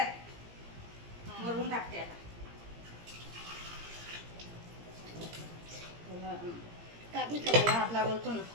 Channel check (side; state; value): left; late; 17 ms